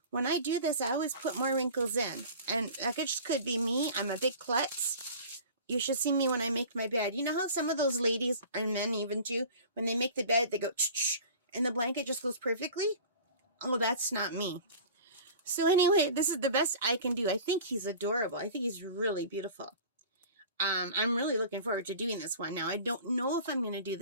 When I do this, I always put more wrinkles in. And that just could be me. I'm a big klutz. You should see me when I make my bed. You know how some of those ladies, or men even too, when they make the bed, they go ch-ch, and the blanket just goes perfectly? Oh, that's not me. So anyway, this is the best I can do. I think he's adorable. I think he's really beautiful. I'm really looking forward to doing this one. Now, I don't know if I'm going to do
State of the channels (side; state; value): both; inverted; correlation -0.40